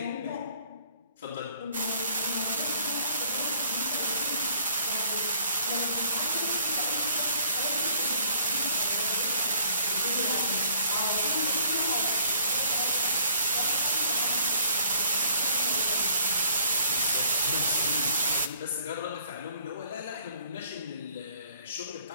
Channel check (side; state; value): both; inverted; correlation -0.61